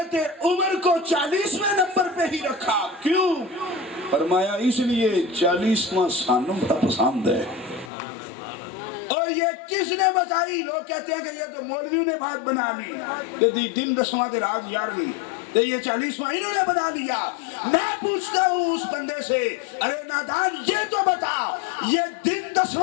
عمر کو 40ویں نمبر پہ ہی رکھا، کیوں؟ فرمایا اس لیے 40واں سانوں بڑا پسند ہے۔ اور یہ کس نے بتائی؟ لوگ کہتے ہیں کہ یہ تو مولویوں نے بات بنا لی کہ دن 10واں کے رات 11ویں، تو یہ 40واں انہوں نے بنا لیا۔ میں پوچھتا ہوں اس بندے سے، ارے نادان یہ تو بتا، یہ دن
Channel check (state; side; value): drops out; right; at 7.9 s